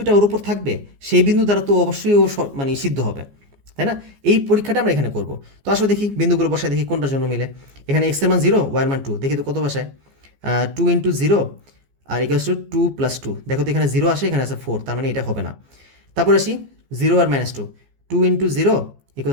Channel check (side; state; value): left; late; 14 ms